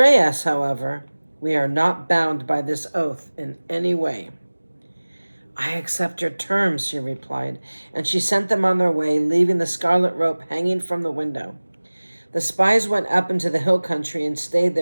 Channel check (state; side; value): inverted; both; correlation -1.00